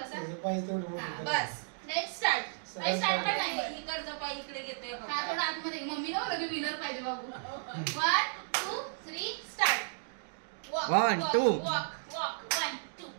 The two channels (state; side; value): silent; left; digital silence